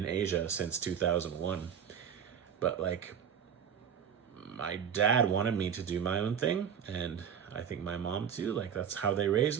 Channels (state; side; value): quieter; left; 8.1 dB